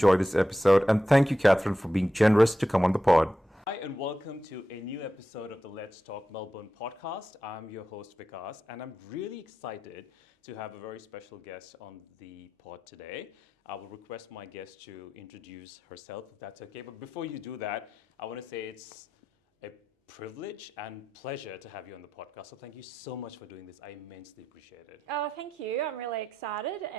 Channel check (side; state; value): both; normal; correlation 0.90